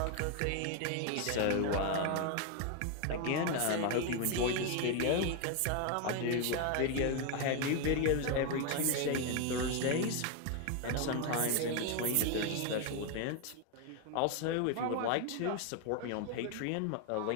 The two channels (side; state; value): both; different; correlation 0.01